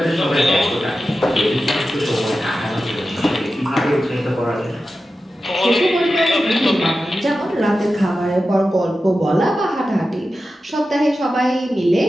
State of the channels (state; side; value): normal; both; correlation 0.92